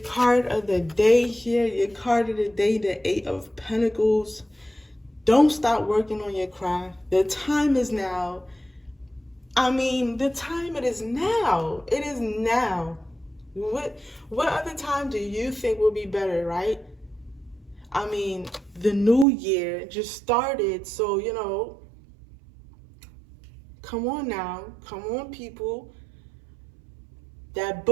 of the day here. Your card of the day, the 8 of Pentacles. Don't stop working on your craft. The time is now. I mean, the time, it is now. It is now. What other time do you think will be better, right? I mean, the new year just started, so, you know, come on now. Come on, people. That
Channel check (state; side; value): drops out; left; at 19.2 s